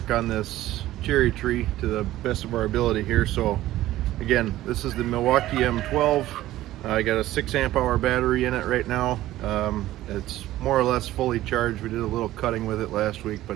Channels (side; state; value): left; quieter; 15.0 dB